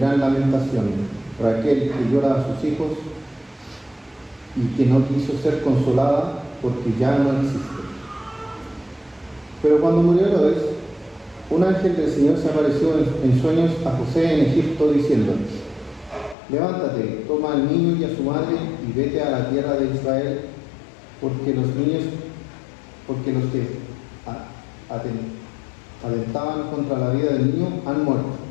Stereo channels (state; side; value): drops out; right; at 16.4 s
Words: lamentación, Raquel que llora a sus hijos y que no quiso ser consolada porque ya no existe. Pero cuando murió Herodes, un ángel del Señor se apareció en sueños a José en Egipto diciendo: levántate, toma al niño y a su madre y vete a la tierra de Israel, porque los que atentaban contra la vida del niño han muerto.